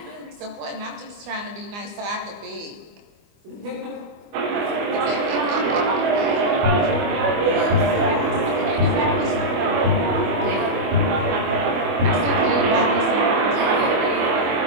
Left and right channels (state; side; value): late; left; 24 ms